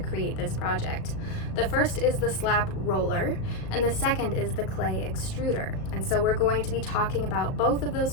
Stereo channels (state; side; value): late; right; 37 ms